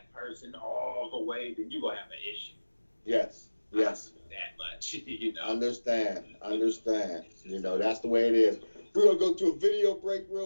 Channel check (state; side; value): inverted; both; correlation -1.00